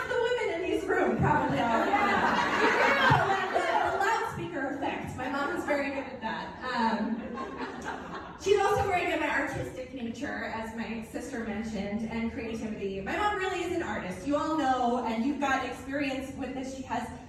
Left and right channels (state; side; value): identical; both; correlation 1.00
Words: the women in this room probably already know. The loudspeaker effect. My mom is very good at that. She's also very good at artistic nature, as my sister mentioned, and creativity. My mom really is an artist. You all know, and you've got experience with this. She